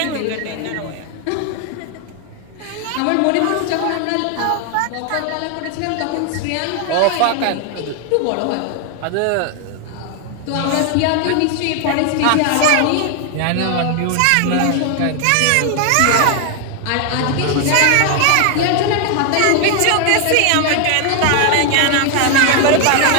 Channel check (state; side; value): different; both; correlation 0.00